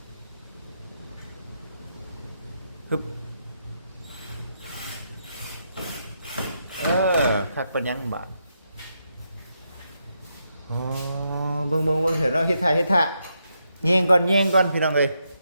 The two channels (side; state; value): both; inverted; correlation -0.81